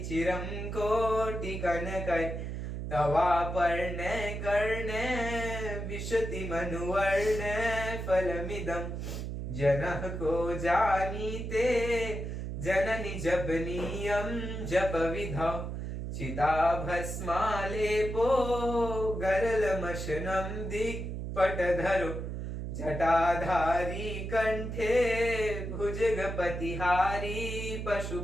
चिरं कोटिकनकै तवापर्णे कर्णे विशति मनुवर्णे फलमिदं जनः को जानीते जननि जपनीयं जपविधौ चिताभस्मालेपो गरलमशनं दिक्पटधरो जटाधारी कंठे भुजगपतिहारी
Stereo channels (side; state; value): right; noise; hum, 5 dB below the sound